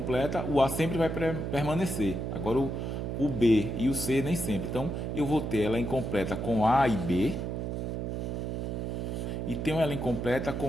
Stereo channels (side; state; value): right; noise; hum, 3 dB below the sound